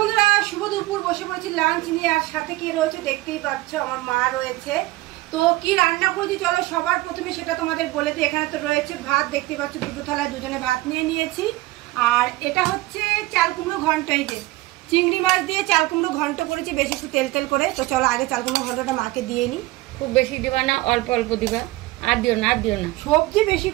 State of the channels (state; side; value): quieter; left; 19.0 dB